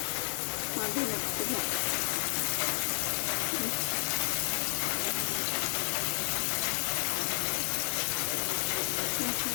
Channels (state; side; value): silent; right; digital silence